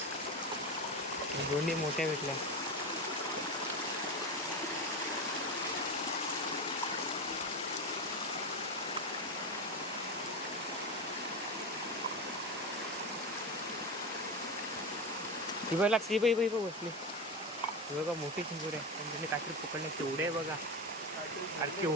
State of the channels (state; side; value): normal; both; correlation 0.19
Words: दोन्ही मोठ्या भेटल्या. ती बघ लागते, बाई बाई बसली. बघा मोठी चिंबोरी आहे, पण त्यांनी काहीतरी पकडले. केवढे आहे बघा, अरे